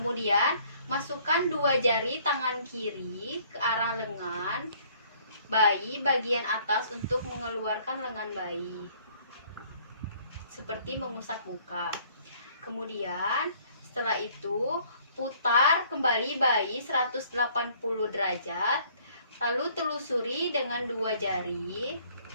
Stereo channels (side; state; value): both; inverted; correlation -0.59